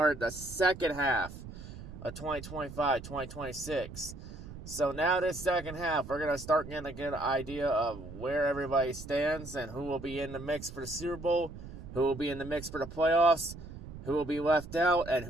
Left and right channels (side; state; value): right; noise; rumble, 13 dB below the sound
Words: the second half of 2025-2026. So now this second half, we're going to start getting a good idea of where everybody stands and who will be in the mix for the Super Bowl, who will be in the mix for the playoffs, who will be left out, and